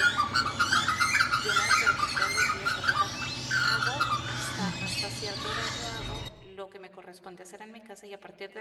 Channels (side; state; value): both; identical; correlation 1.00